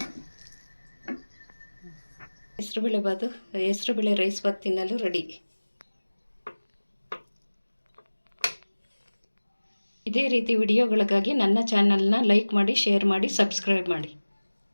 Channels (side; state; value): both; inverted; correlation -1.00